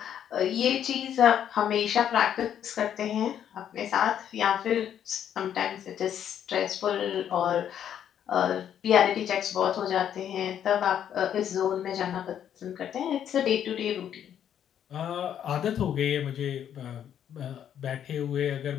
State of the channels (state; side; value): quieter; right; 9.6 dB